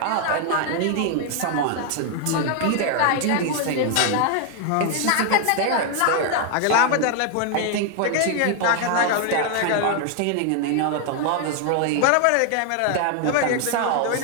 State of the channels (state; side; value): different; both; correlation 0.00